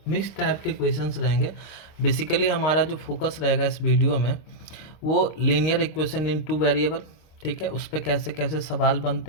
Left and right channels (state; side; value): late; right; 26 ms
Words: मिक्स टाइप के क्वेश्चंस रहेंगे। बेसिकली हमारा जो फोकस रहेगा इस वीडियो में वो लीनियर इक्वेशन इन टू वेरिएबल, ठीक है, उस पर कैसे कैसे सवाल